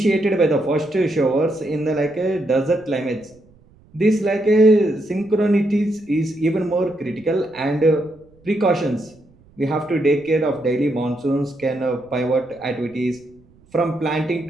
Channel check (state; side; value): noise; right; rumble, 29 dB below the sound